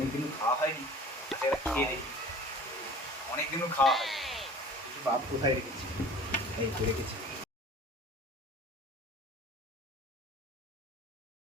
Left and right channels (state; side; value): normal; both; correlation 0.44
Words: খাওয়া হয়নি, এটা খেয়ে দেখি। অনেকদিনও খাওয়া হয়নি, বাপ কোথায় রেখেছি? এই তো রেখেছি।